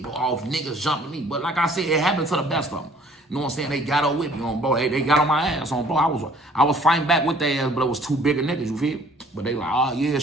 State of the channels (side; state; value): both; normal; correlation 0.56